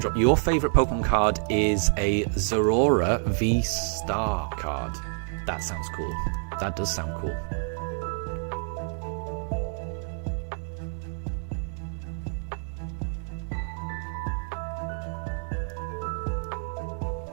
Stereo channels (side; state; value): left; silent; 57 dB below the other